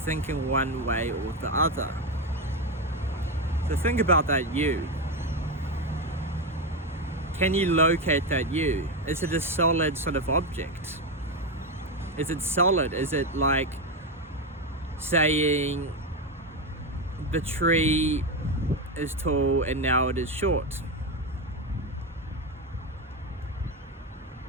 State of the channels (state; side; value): normal; both; correlation 0.12